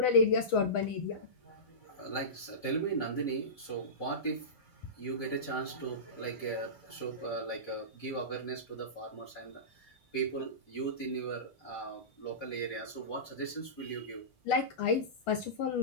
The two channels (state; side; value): late; right; 1.4 ms